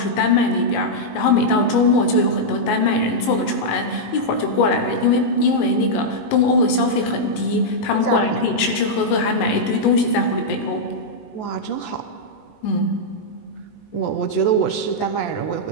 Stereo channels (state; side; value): late; right; 19 ms